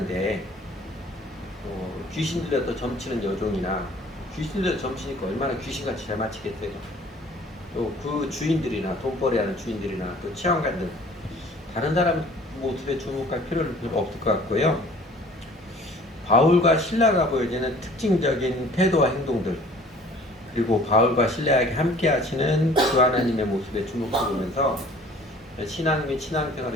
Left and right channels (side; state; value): both; normal; correlation 0.51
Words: 귀신 들려서 점치는 여종이나 귀신 들려서 점치니까 얼마나 귀신같이 잘 맞히겠어요. 또 그 주인들이나 돈벌이하는 주인들이나 또 치안관들 다른 사람 모습에 주목할 필요는 별로 없을 것 같고요. 바울과 신라가 보여지는 특징적인 태도와 행동들, 그리고 바울과 신라에게 함께 하시는 그 하나님의 모습에 주목해보면서 신앙 및